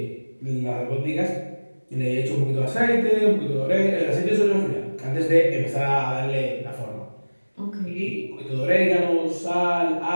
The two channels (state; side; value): inverted; both; correlation -1.00